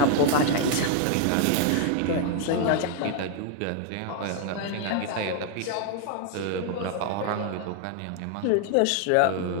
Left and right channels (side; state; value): both; different; correlation 0.00